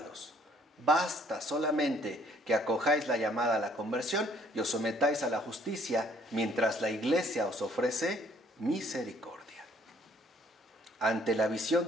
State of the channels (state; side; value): normal; both; correlation 0.62